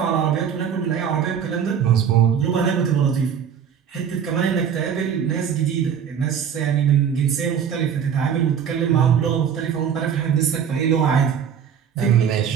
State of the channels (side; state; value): left; quieter; 7.9 dB